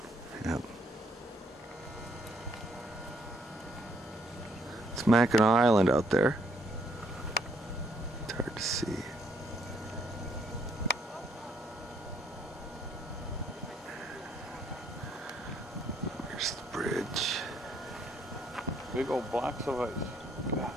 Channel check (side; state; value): both; normal; correlation 0.69